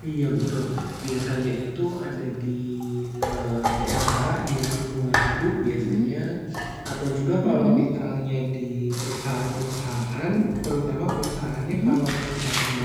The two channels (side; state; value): both; identical; correlation 1.00